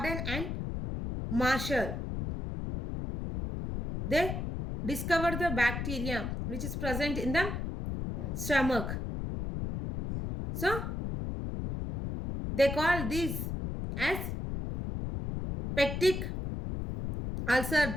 and Marshall. They discovered the bacteria which is present in the stomach. So they call this as peptic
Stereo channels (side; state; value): left; noise; rumble, 4 dB below the sound